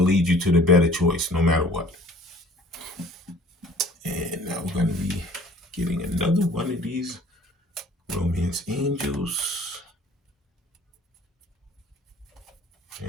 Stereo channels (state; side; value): normal; both; correlation 0.51